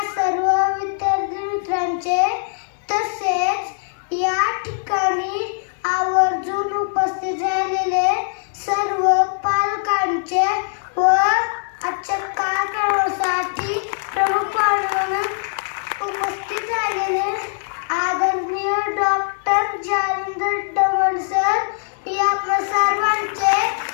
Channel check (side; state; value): right; silent; digital silence